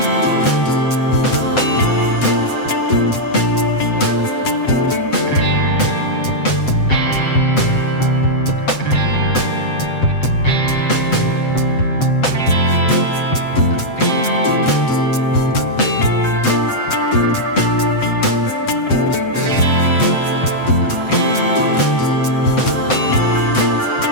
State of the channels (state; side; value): late; right; 7.8 ms